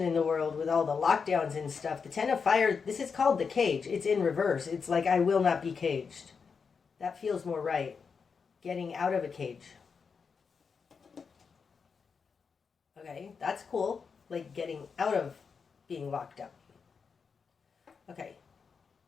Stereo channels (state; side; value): quieter; right; 5.7 dB